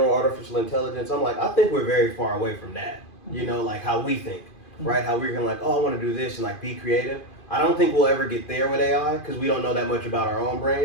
artificial intelligence, I'm like, I think we're very far away from that. You know, like how we think, right? How we're gonna like, oh, I want to do this and like be creative. I don't think we'll ever get there with AI because we don't know that much about our own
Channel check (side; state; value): right; late; 2.5 ms